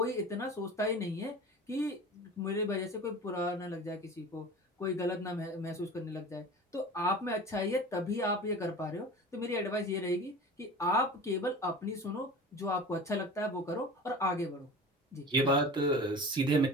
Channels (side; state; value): both; normal; correlation 0.36